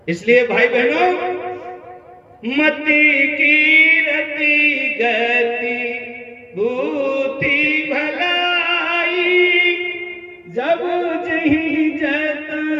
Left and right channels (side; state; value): both; identical; correlation 1.00